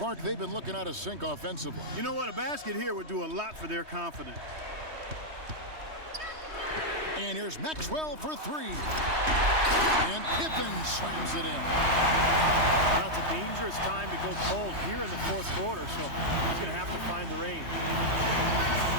they've been looking out of sync offensively. You know what? A basket here would do a lot for their confidence. And here's Maxwell for 3. And Pippen slams it in. Now it's a dangerous time to go cold here in the 4th quarter, so he's going to have to find the range.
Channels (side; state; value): left; late; 3.2 ms